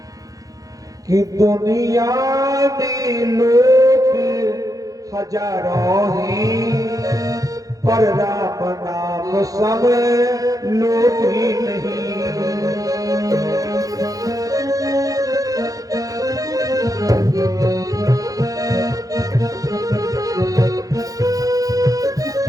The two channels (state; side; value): late; left; 0.17 ms